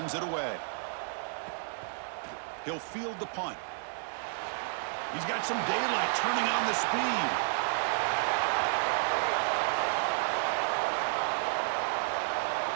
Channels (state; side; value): silent; left; 57 dB below the other